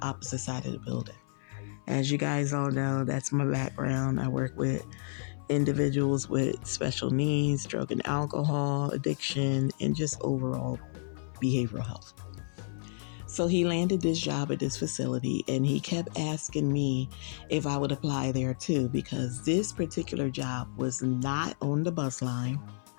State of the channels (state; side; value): silent; right; 57 dB below the other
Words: opposite side of the building. As you guys all know, that's my background. I work with individuals with special needs, drug and alcohol addiction, and just overall behavioral health. So he landed this job at this facility, and he kept asking me if I would apply there too, because this particular job was not on the bus line.